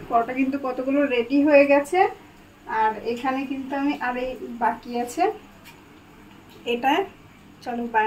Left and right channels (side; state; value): both; identical; correlation 1.00